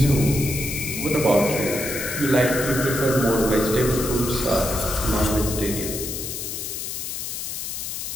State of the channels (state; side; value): noise; left; hiss, 5 dB below the sound